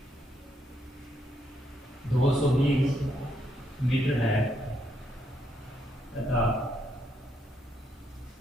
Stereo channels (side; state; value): both; normal; correlation 0.76